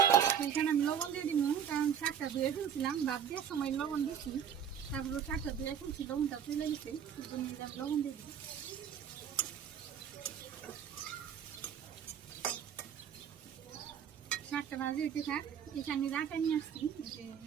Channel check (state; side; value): quieter; left; 8.3 dB